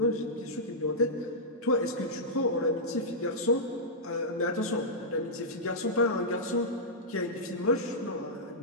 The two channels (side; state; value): both; normal; correlation -0.11